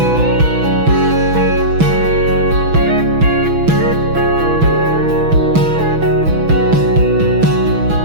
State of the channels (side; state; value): left; late; 6.1 ms